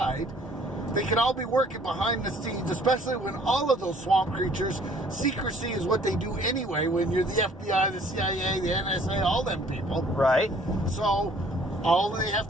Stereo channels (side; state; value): both; normal; correlation 0.57